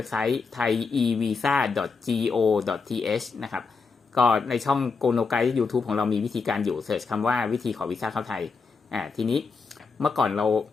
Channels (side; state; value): right; quieter; 4.8 dB